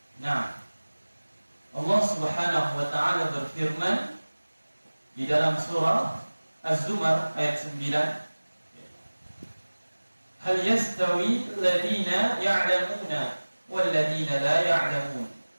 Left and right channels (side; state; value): both; inverted; correlation -1.00